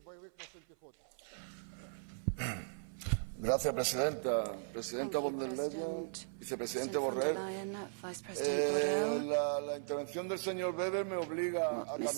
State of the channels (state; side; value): silent; left; 53 dB below the other